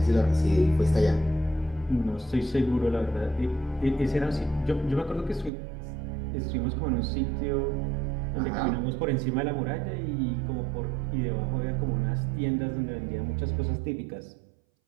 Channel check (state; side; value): drops out; left; at 5.5 s